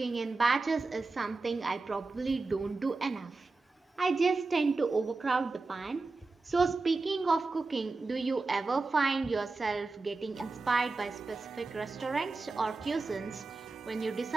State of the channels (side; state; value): left; quieter; 3.7 dB